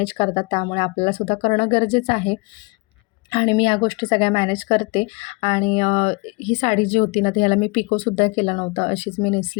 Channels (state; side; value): quieter; right; 28.6 dB